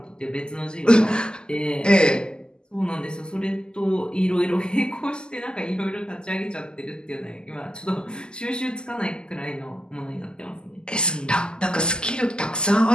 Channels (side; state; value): right; late; 0.046 ms